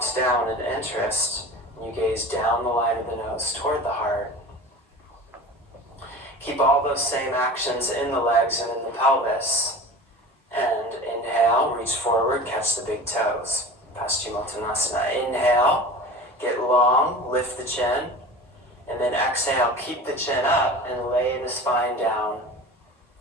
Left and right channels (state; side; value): normal; both; correlation 0.36